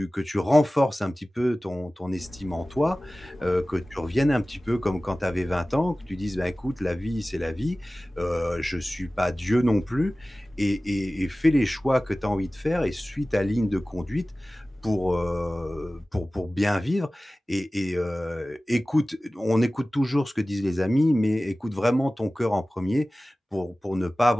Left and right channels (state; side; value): normal; both; correlation 0.97